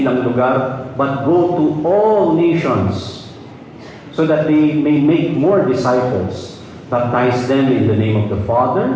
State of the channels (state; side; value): identical; both; correlation 1.00